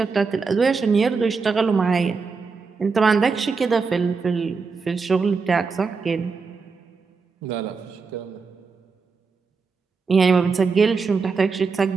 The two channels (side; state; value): left; quieter; 4.8 dB